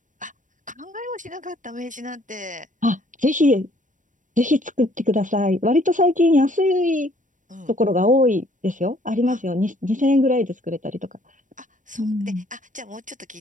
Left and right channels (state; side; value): late; left; 0.37 ms